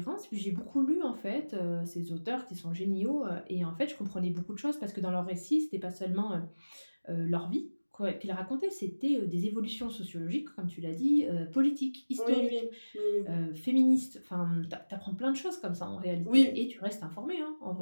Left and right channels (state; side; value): inverted; both; correlation -1.00